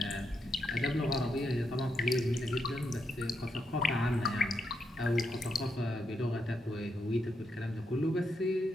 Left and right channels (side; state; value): both; normal; correlation 0.81